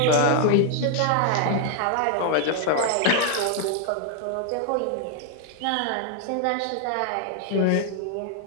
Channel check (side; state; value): both; different; correlation 0.00